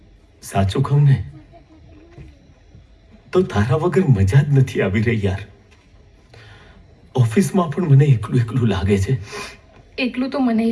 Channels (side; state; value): both; identical; correlation 1.00